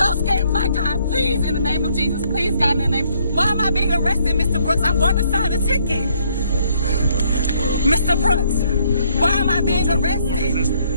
scared. My God, please, in the name of Jesus, please, God, in the name. Why am I being arrested, Mr. Brooks? I'm going to sign the ticket. Mr. Brooks, why am I being arrested?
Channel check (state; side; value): inverted; both; correlation -0.68